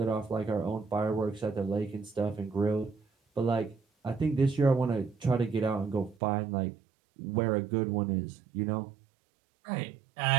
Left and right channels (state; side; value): drops out; left; at 6.2 s